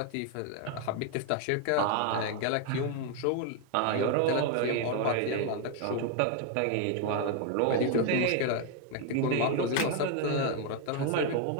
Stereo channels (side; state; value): both; different; correlation 0.01